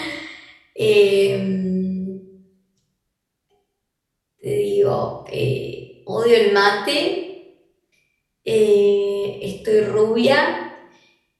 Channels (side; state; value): both; identical; correlation 1.00